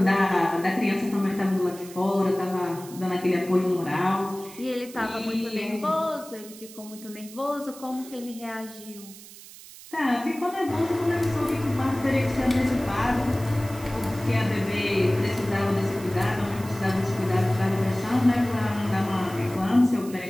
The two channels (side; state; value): right; noise; hiss, 17 dB below the sound